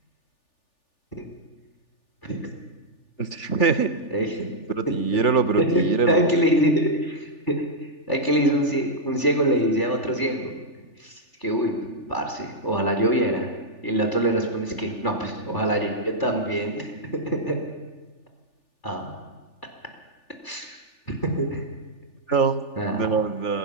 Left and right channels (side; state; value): right; late; 3.4 ms